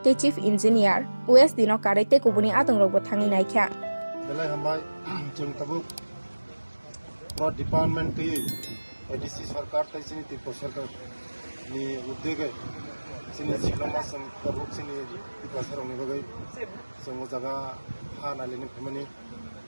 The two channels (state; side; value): inverted; both; correlation -1.00